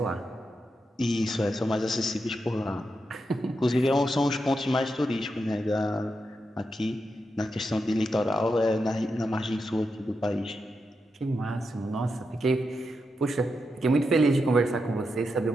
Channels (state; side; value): normal; both; correlation 0.86